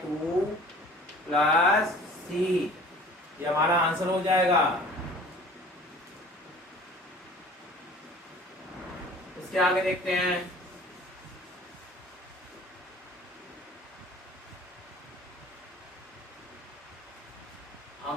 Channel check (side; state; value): both; normal; correlation 0.47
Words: 2 plus c। ये हमारा आंसर हो जाएगा। इसके आगे देखते हैं,